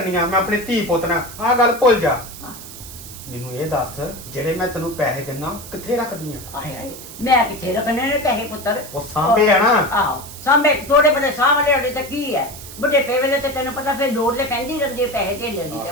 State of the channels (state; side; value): noise; right; hiss, 14 dB below the sound